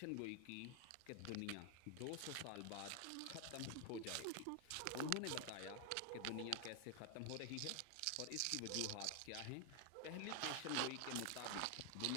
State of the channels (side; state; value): both; different; correlation 0.00